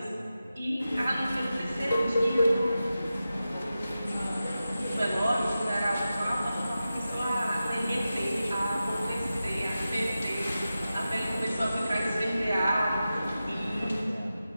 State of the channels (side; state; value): both; inverted; correlation -0.93